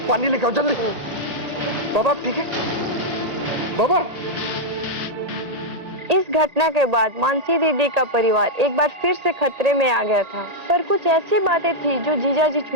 पानी लेके आओ जल्दी। बाबा आप ठीक है? बाबा इस घटना के बाद मानसी दीदी का परिवार एक बार फिर से खतरे में आ गया था, पर कुछ ऐसी बातें थी जो जीजा जी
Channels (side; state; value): left; late; 1.8 ms